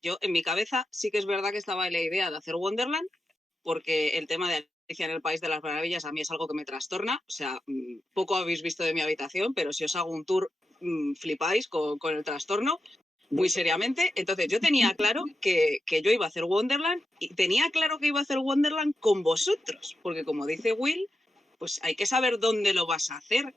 yo en mi cabeza sí que es verdad que estaba la idea de hacer Wonderland, porque el tema de Alicia en el País de las Maravillas a mí es algo que me trastorna. O sea, poco habéis visto de mi habitación, pero si os hago un tour, flipáis con el trastorno. muy seriamente. Entonces yo tenía claro que yo iba a hacer Wonderland y tenía claro que iba a hacer Wonderland con vosotros, porque como dice Will, pues hay que saber dónde lo vas a hacer.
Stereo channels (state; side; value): normal; both; correlation 0.88